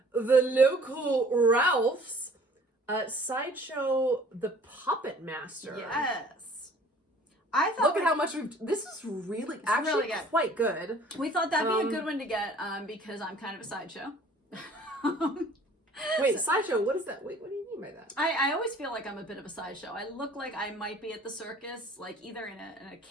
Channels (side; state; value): both; normal; correlation 0.52